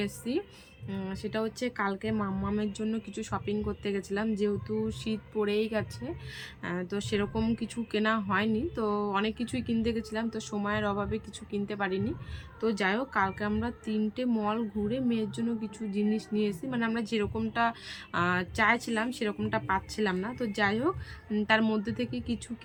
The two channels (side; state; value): both; identical; correlation 1.00